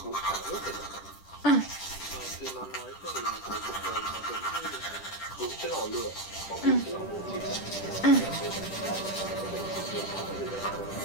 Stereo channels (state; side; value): late; right; 10 ms